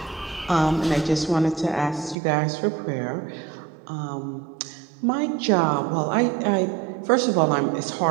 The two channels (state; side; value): drops out; left; at 2.1 s